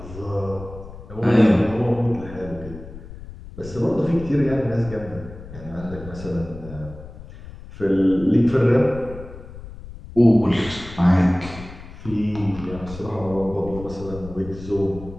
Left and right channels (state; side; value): noise; left; rumble, 14 dB below the sound